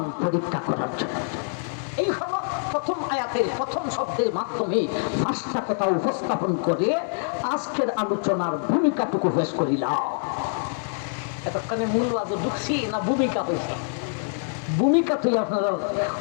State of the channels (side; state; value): right; silent; digital silence